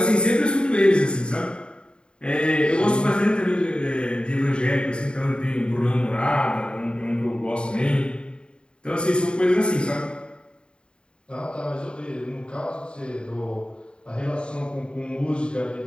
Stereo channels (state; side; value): late; right; 0.052 ms